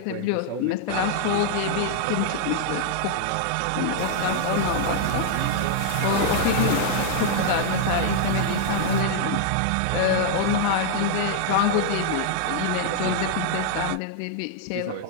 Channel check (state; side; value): different; both; correlation 0.00